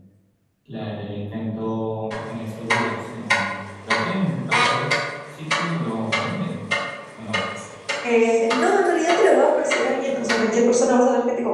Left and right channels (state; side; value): identical; both; correlation 1.00